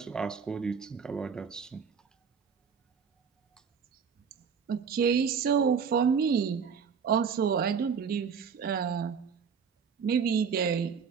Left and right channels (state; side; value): quieter; left; 6.5 dB